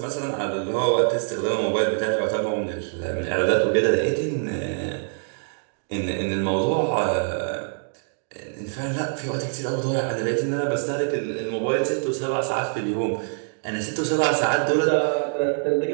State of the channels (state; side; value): silent; left; digital silence